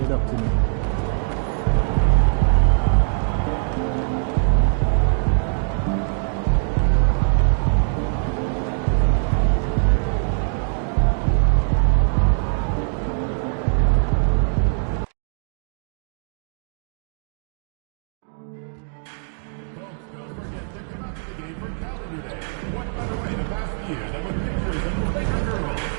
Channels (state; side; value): silent; left; 58 dB below the other